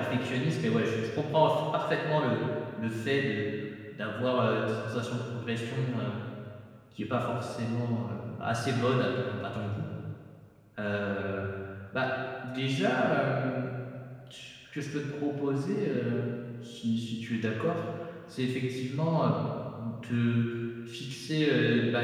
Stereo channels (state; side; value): identical; both; correlation 1.00